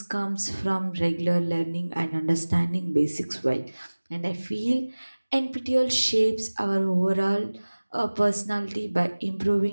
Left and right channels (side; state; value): both; inverted; correlation -1.00